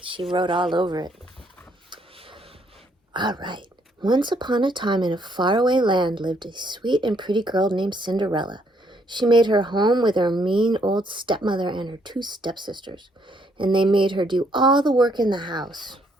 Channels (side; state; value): both; normal; correlation 0.70